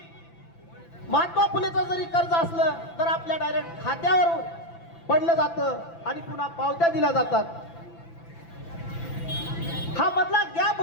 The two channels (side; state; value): right; late; 5.9 ms